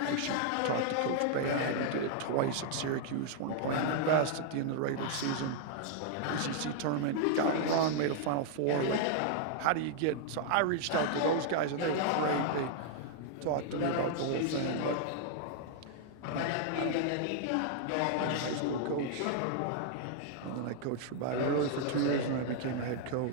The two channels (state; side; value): different; both; correlation -0.01